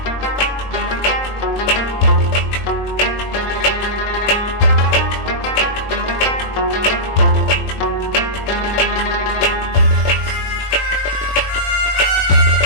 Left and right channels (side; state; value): right; late; 21 ms